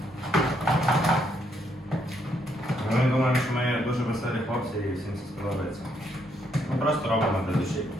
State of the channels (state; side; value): normal; both; correlation 0.74